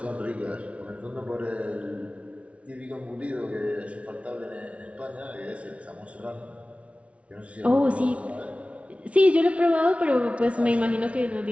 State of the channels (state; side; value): late; left; 0.063 ms